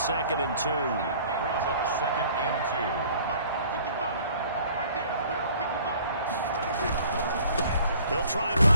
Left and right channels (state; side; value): inverted; both; correlation -0.52